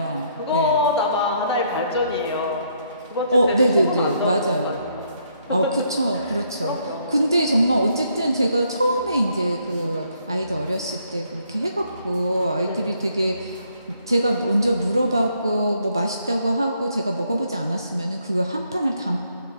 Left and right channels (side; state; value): both; inverted; correlation -0.71